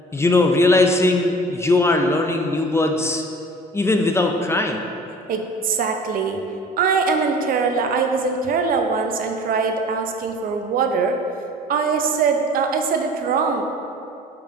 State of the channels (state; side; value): normal; both; correlation 0.44